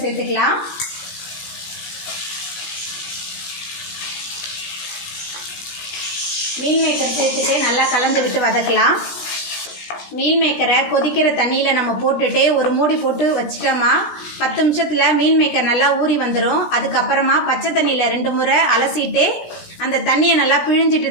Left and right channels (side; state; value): right; late; 17 ms